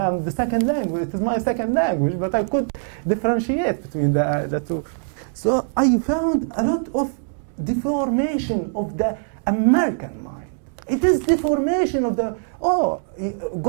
the second language. It is my second language, but I could differentiate the two. So I found a lot of deformation of the American mind. It is deformation of the, go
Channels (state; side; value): silent; left; digital silence